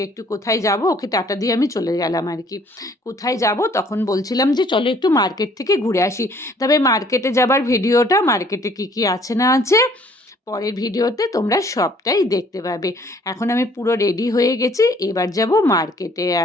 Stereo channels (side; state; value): both; normal; correlation 0.59